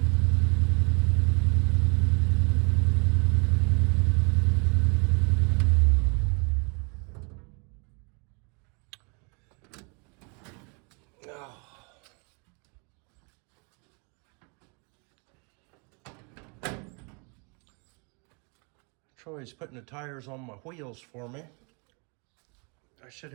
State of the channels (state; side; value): quieter; left; 34.3 dB